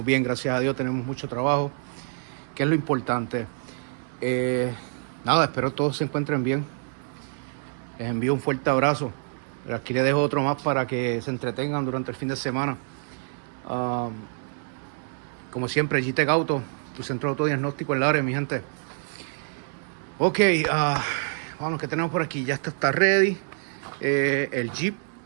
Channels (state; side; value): silent; left; 61 dB below the other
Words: bien, gracias a Dios, tenemos mucho trabajo, que es lo importante. Nada, espero todos se encuentren bien. Les envío un fuerte abrazo. Pero aquí les dejo otro más para que se entretengan durante el fin de semana. Como siempre, GTEC Auto, tu centro de autodiagnóstico en la área, mi gente. Ok, vamos, ¿qué tenemos por aquí? Ya está ready. El Jeep,